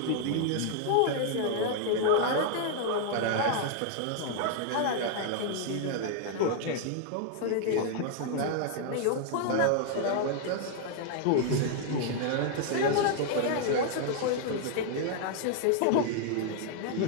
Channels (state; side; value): different; both; correlation 0.00